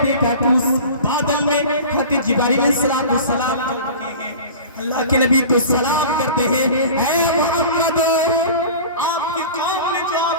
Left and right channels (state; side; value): inverted; both; correlation -0.38